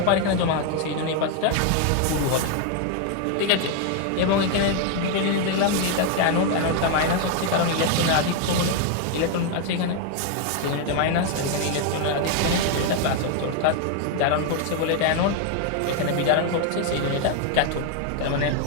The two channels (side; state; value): both; different; correlation 0.01